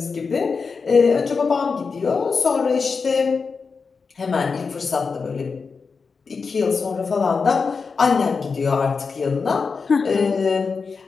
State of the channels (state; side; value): quieter; right; 5.0 dB